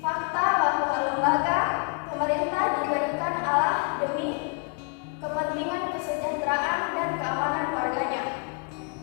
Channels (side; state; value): right; quieter; 35.4 dB